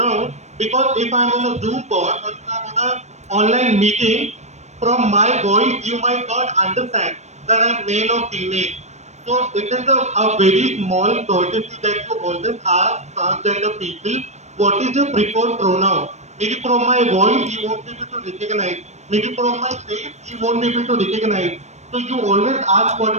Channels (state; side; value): late; left; 0.33 ms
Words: Because if I'm on a Zoom call or if I'm on an online meeting, from my voice you might not understand that I'm male or female. So it is a very small courtesy that you always ask transgender people, what is your preferred pronoun? Maybe from my voice you won't be able to recognize. Maybe from my face you won't be able to recognize. So you always ask what